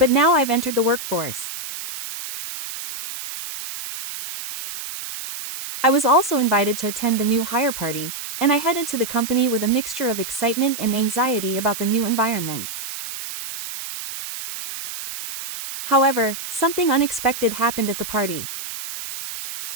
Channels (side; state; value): right; noise; hiss, 8 dB below the sound